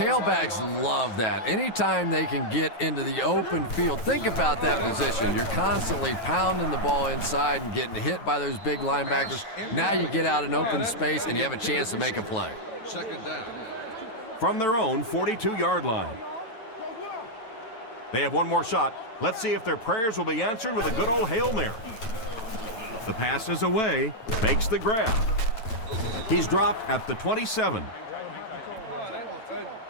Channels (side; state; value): right; late; 9.0 ms